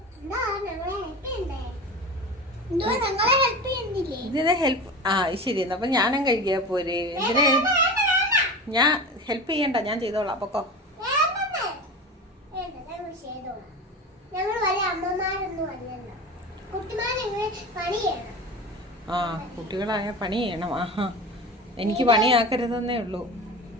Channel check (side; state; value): both; normal; correlation 0.30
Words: ഇതിനെ ഹെൽപ്പ് ശരി. അപ്പൊ ഞാനും കഴിക്കാ പോരെ? ഇതിനെ ഞാൻ ഹെൽപ്പ് ചെയ്യണ്ട, ഞാൻ ചെയ്തോളാം. പൊക്കോ. കുട്ടികളായ പണി ചെയ്യണം. ആഹാ, എനിക്ക് പണിയാക്കരുതെന്നേ ഉള്ളൂ.